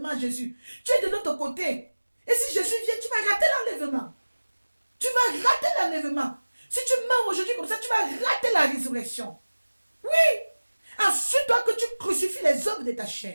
à Jésus. Tu es de l'autre côté. Et si Jésus vient, tu vas rater l'enlèvement. Si tu meurs aujourd'hui comme ça, tu vas rater la résurrection. Oui. Assure-toi que tu crucifies les œuvres de ta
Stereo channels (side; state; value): both; inverted; correlation -1.00